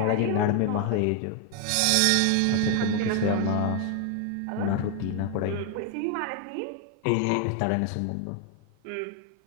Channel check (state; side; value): different; both; correlation 0.01